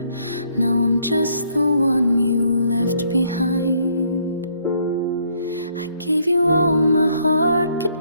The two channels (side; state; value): both; inverted; correlation -0.68